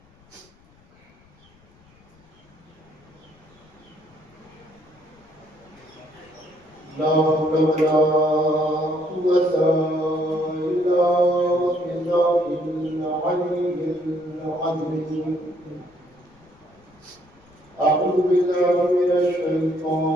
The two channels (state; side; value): noise; left; rumble, 29 dB below the sound